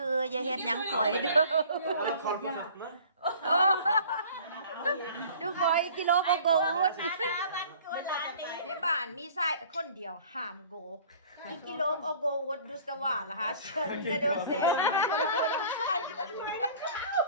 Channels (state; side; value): inverted; both; correlation -0.48